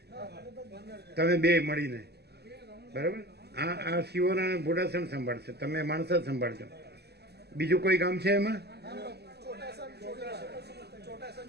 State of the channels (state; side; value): late; left; 0.48 ms